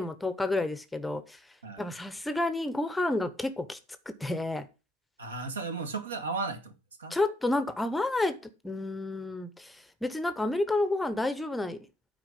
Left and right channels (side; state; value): both; normal; correlation 0.77